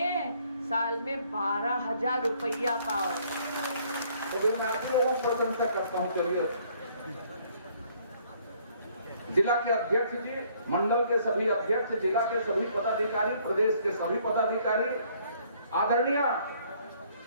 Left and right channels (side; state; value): both; inverted; correlation -0.63